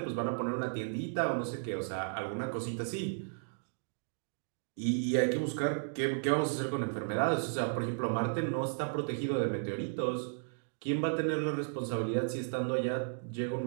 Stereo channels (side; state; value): left; silent; digital silence